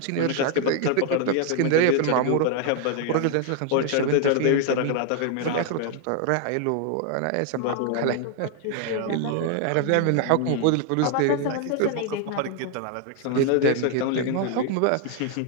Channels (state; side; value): different; both; correlation 0.00